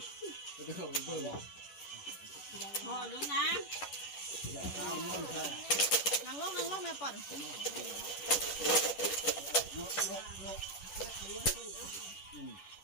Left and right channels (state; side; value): late; right; 10 ms